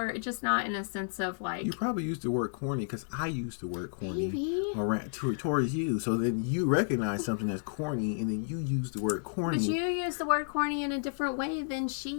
just not in a sense of like. You probably used the word corny because I used the word corny Maybe. towards you. So then you recognize something as corny, and then you use the word corny. But you use the word corny in a different way than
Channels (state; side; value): silent; right; digital silence